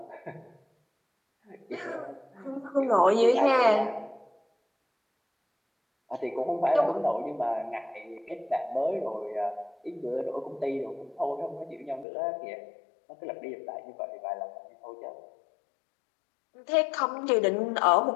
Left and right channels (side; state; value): right; drops out; at 12.1 s